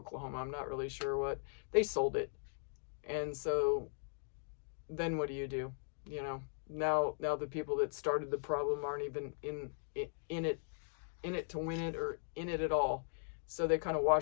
I'm not really sure what, they sold it. And so then what do? You know, now the people that started the problem aren't even in it to win it or in it at all. So they kind of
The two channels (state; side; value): silent; right; digital silence